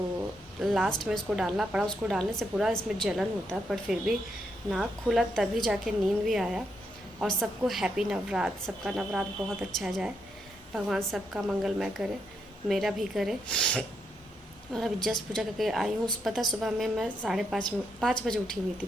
लास्ट में इसको डालना पड़ा। उसको डालने से पूरा इसमें जलन होता है, पर फिर भी नाक खुला तभी जाके नींद भी आया। और सबको हैप्पी नवरात्र, सबका नवरात्र बहुत अच्छा जाए, भगवान सबका मंगलमय करे, मेरा भी करे। और अभी जस्ट पूजा करके आई हूँ। पता सुबह में मैं 5:30 बजे उठी हुई थी।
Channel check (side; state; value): both; normal; correlation 0.79